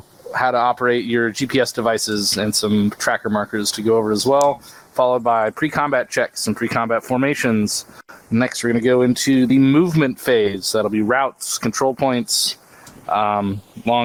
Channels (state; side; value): identical; both; correlation 1.00